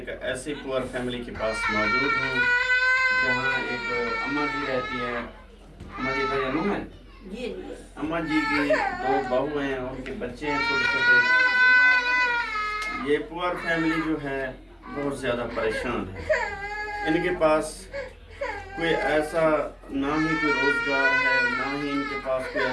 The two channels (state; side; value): identical; both; correlation 1.00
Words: ایسی پور فیملی کے پاس موجود ہوں جہاں ایک اماں جی رہتی ہے۔ اماں جی کا نام ہے جی اماں جی کی 2 بہو ہیں، ان کے بچے ہیں چھوٹے چھوٹے۔ یہ پور فیملی جو ہے بہت زیادہ پریشان ہے۔ ان کے پاس کوئی ایسا نہ ہی کوئی روزگار ہے، نہ ہی ان کے پاس کوئی